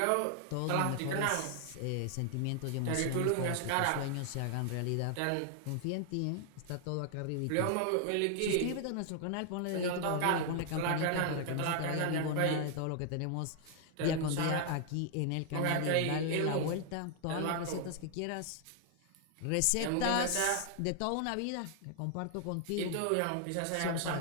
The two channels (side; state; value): both; different; correlation 0.00